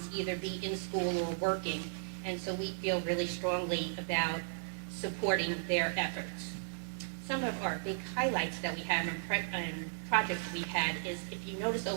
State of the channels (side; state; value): left; silent; digital silence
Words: either be in school or working. And so we feel really strongly about supporting their efforts. Some of our big highlights that we have and projects we've had is, if you notice